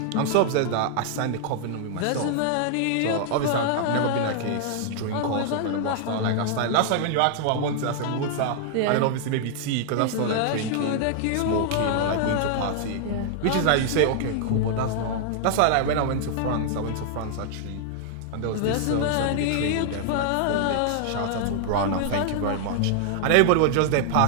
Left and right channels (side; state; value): both; different; correlation -0.01